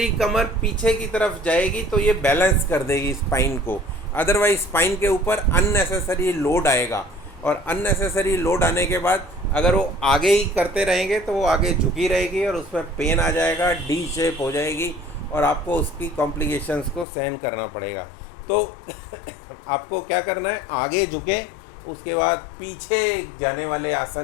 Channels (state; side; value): drops out; right; at 17.1 s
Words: कमर पीछे की तरफ जाएगी तो ये बैलेंस कर देगी स्पाइन को। अदरवाइज स्पाइन के ऊपर अननेसेसरी लोड आएगा, और अननेसेसरी लोड आने के बाद अगर वो आगे ही करते रहेंगे तो वो आगे झुकी रहेगी और उसमें पेन आ जाएगा, डी शेप हो जाएगी और आपको उसकी कॉम्प्लिकेशंस को सहन करना पड़ेगा। तो आपको क्या करना है, आगे झुके, उसके बाद पीछे जाने वाले